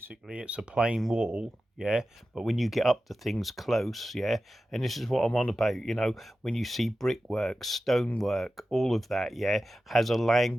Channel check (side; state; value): both; normal; correlation 0.93